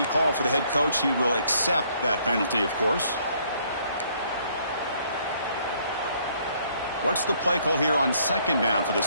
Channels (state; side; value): inverted; both; correlation -0.65